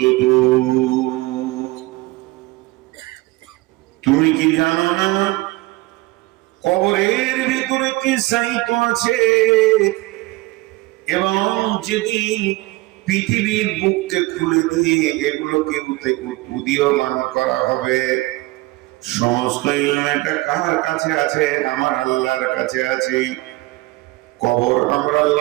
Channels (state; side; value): quieter; left; 20.8 dB